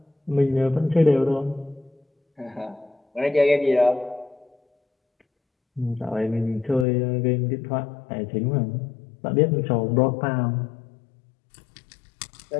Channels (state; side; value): drops out; right; at 6.9 s